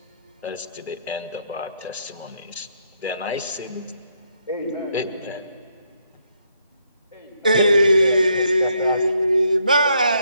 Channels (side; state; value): both; inverted; correlation -0.75